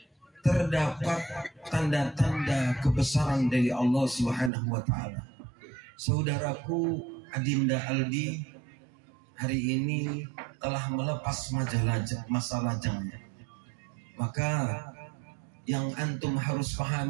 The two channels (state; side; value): drops out; left; at 4.5 s